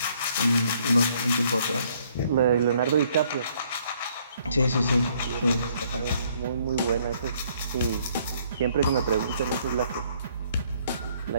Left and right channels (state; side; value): inverted; both; correlation -0.65